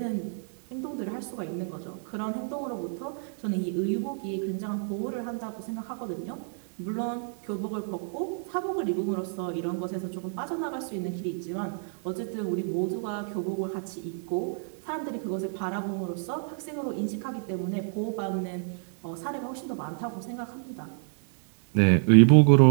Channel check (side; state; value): left; silent; 59 dB below the other